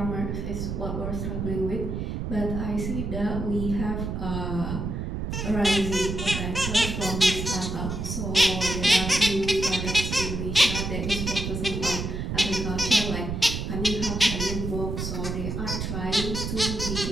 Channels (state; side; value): noise; right; rumble, 3 dB below the sound